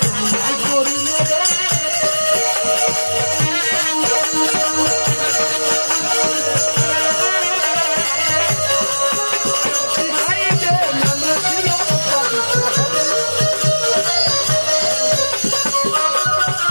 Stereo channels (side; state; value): both; inverted; correlation -1.00